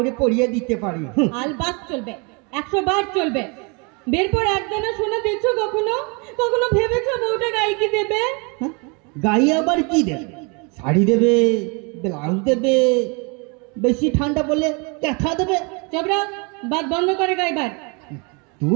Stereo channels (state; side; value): quieter; left; 32.1 dB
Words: পরিয়ে দিতে পারি। আলবাত চলবে, 100 বার চলবে। বেরপর একদানা সোনা দেখছো কখনো ভেবেছো বউটা গায়ে কি দেবে? গায়ে আবার কি দেবে? শাড়ি দেবে, ব্লাউজ দেবে, বেশি ঠান্ডা পড়লে ক্যাথা দেবে। চবরা, বাদ বন্ধ করে গাইবার।